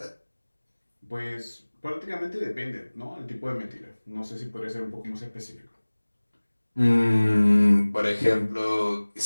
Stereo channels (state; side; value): inverted; both; correlation -1.00